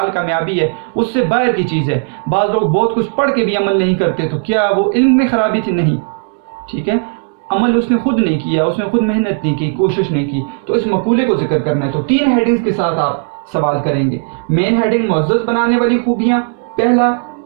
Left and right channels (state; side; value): silent; left; 59 dB below the other